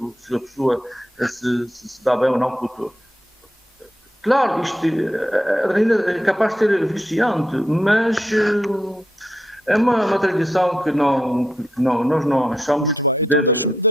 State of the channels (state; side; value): normal; both; correlation 0.81